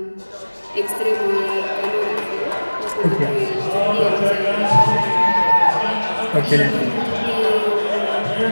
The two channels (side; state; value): both; inverted; correlation -1.00